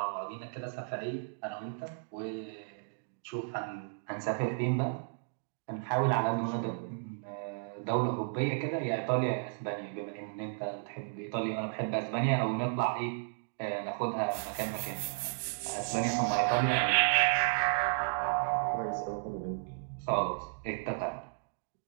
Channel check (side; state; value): left; silent; digital silence